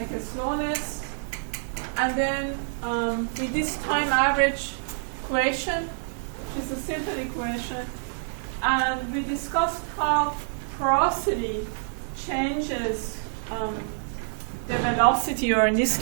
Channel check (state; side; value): silent; left; digital silence